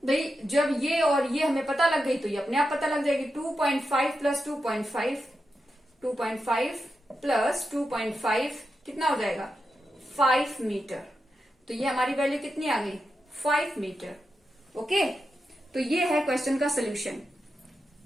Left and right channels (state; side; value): normal; both; correlation 0.88